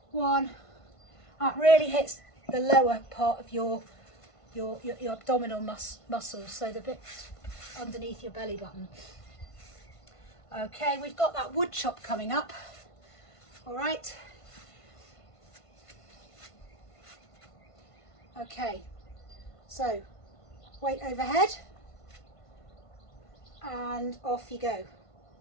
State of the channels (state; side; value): late; right; 1.5 ms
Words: 1. That really hits the lower part of your abdominal muscles, so the bit underneath your belly button. Okay, we've got that wood chop coming up. All right. Okay, so weight overhead and off you go.